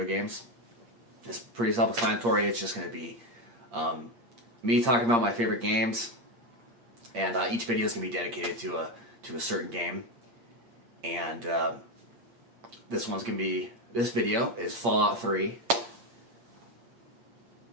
Games. It's pretty self-explanatory. It's just going to be me talking about my favorite games, and each video is going to be dedicated to a certain game. And this video is Fallout 3.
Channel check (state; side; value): late; left; 8.6 ms